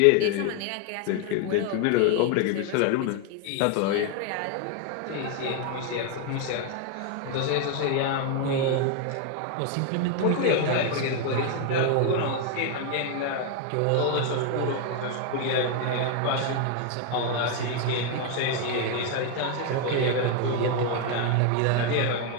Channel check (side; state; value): both; different; correlation 0.01